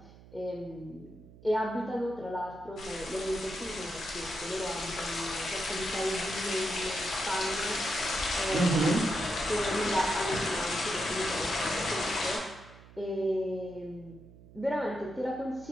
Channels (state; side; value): noise; right; hum, 20 dB below the sound